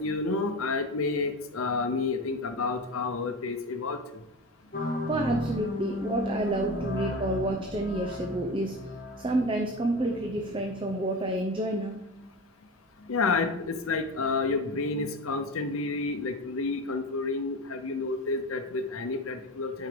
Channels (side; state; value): both; normal; correlation 0.27